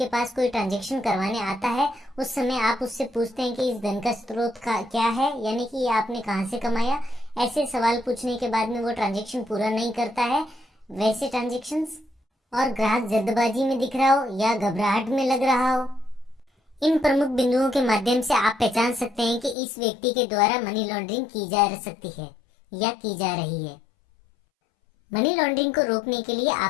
पास कोई ट्रांजैक्शन करवाने आता है उस समय आप उससे पूछते हैं कि इस धन का स्रोत का क्या है, यानी कि ये आपने कहाँ से कमाया। ऐसे सवाल पूछने के बाद में वो ट्रांजैक्शन पूरा नहीं करता है वैसे ट्रांजैक्शंस, और ग्राहक जल्दबाजी में दिख रहा हो या घबराहट में लग रहा हो। इन प्रमुख बिंदुओं के माध्यम से आप पहचान सकते हैं कि इस व्यक्ति के द्वारा मनी लॉन्ड्रिंग की जा सकती है या की जा रही है। मनी लॉन्ड्रिंग को रोकने के लिए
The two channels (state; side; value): drops out; right; at 19.6 s